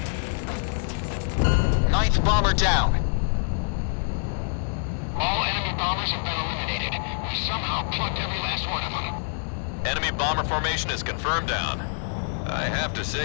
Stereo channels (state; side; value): silent; right; digital silence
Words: Ninth bomber down. All enemy bombers have been eliminated. We somehow plucked every last one of them. Enemy bomber formation is confirmed down. I have to